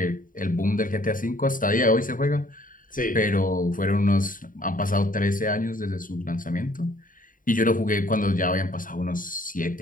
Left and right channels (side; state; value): right; late; 0.39 ms